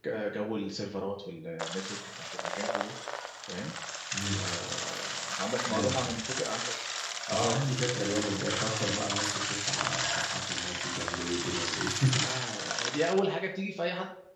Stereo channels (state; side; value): identical; both; correlation 1.00